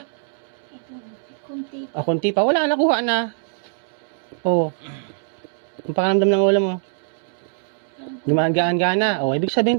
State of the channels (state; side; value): silent; left; 64 dB below the other